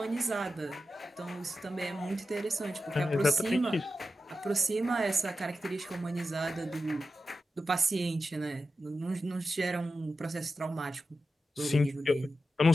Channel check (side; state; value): both; normal; correlation 0.91